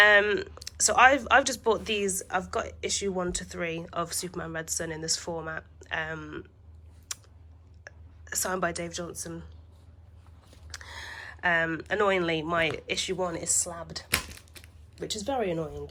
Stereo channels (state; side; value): identical; both; correlation 1.00